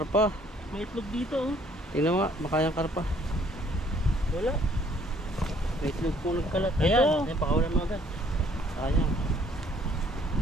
May itlog dito oh. Tingnan mo nga, baka yung karpa. Wala. May itlog po nagkalat. Ito. Ayan, ayan, pakawalan mo agad. Sayang.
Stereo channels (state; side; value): normal; both; correlation 0.62